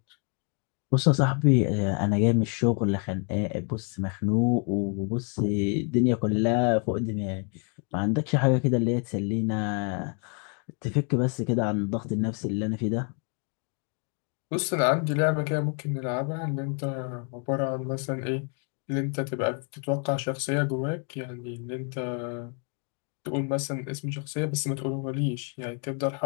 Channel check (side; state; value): right; quieter; 37.9 dB